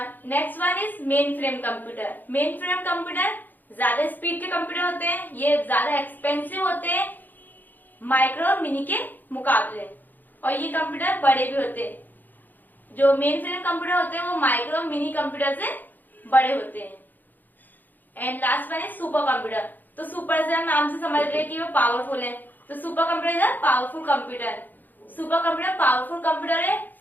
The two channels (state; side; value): late; right; 0.087 ms